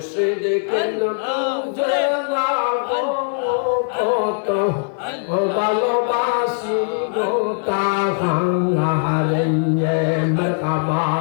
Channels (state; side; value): silent; right; 57 dB below the other